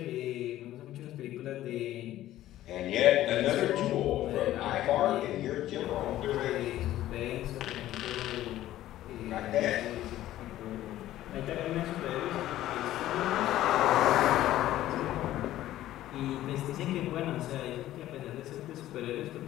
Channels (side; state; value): right; quieter; 14.0 dB